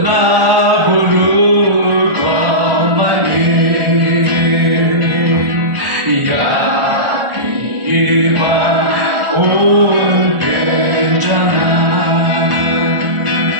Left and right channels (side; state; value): left; late; 1.4 ms